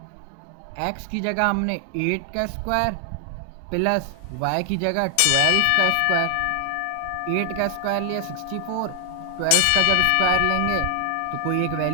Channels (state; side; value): different; both; correlation 0.00